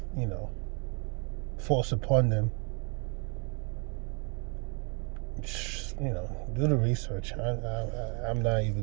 forced upon them. Do the research. I'm not even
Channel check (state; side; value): quieter; left; 35.2 dB